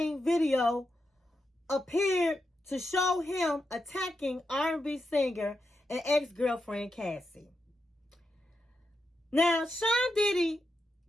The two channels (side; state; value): both; normal; correlation 0.86